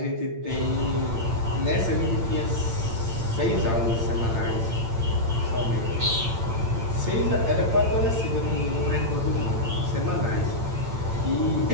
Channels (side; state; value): left; late; 8.8 ms